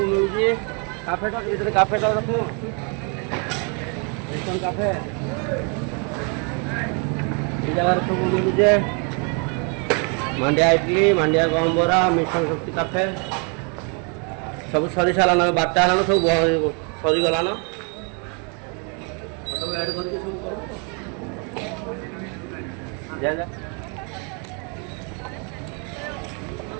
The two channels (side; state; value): left; quieter; 36.2 dB